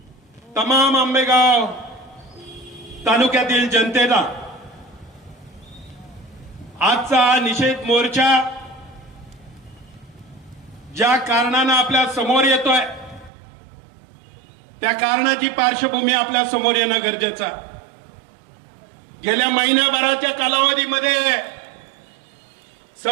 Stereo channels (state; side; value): drops out; left; at 13.3 s